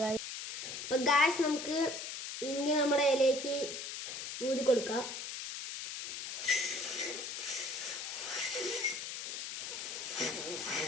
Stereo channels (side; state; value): left; noise; hiss, 6 dB below the sound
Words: ഗായ്സ്. അപ്പം ഗായ്സ് നമുക്ക് ഇങ്ങ് നമ്മുടെ ഇലയ്ക്ക് ഊതി കൊടുക്കാം.